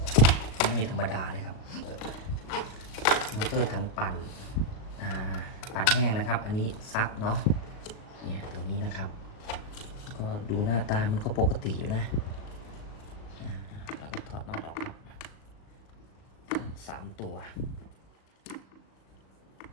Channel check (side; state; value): right; late; 37 ms